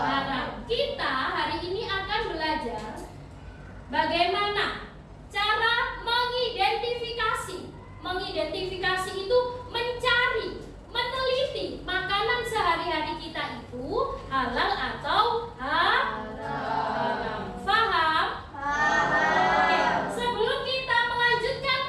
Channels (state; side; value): identical; both; correlation 1.00